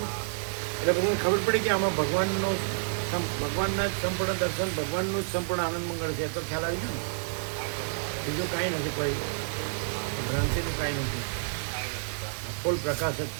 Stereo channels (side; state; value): left; silent; 58 dB below the other